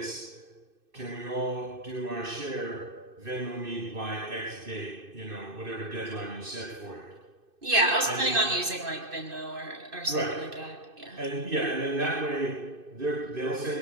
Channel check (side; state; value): left; late; 2.6 ms